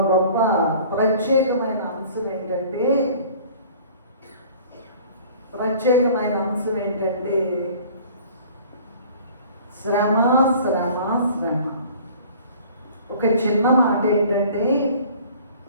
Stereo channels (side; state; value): both; inverted; correlation -0.49